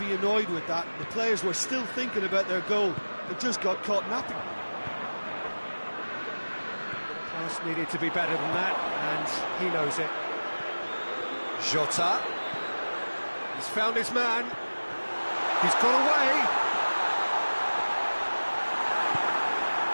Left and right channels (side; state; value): both; inverted; correlation -1.00